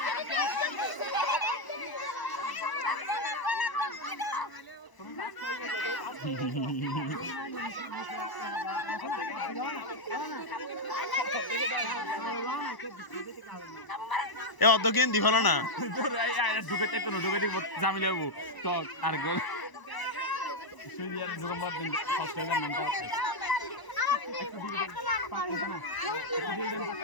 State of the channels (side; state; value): right; late; 1.0 ms